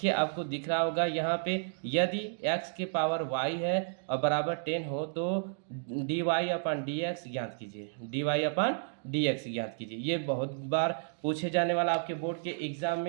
आपको दिख रहा होगा यहाँ पे, यदि x के पावर y है और बराबर 10 हो तो dy/dx ज्ञात कीजिए, dy/dx ज्ञात कीजिए। ये बहुत बार पूछे जाने वाला आपके बोर्ड के एग्जाम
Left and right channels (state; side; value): silent; left; digital silence